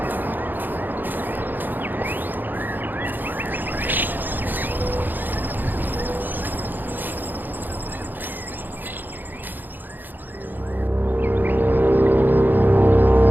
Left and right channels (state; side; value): late; left; 0.089 ms